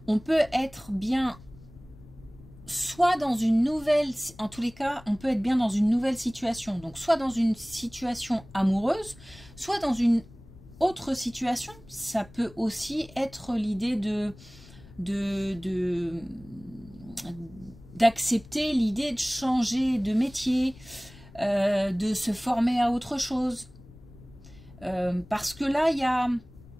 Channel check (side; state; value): left; noise; rumble, 21 dB below the sound